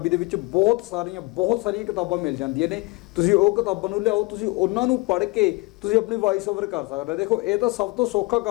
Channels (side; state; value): right; quieter; 24.7 dB